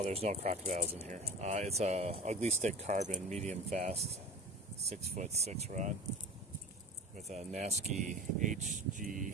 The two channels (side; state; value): both; normal; correlation 0.35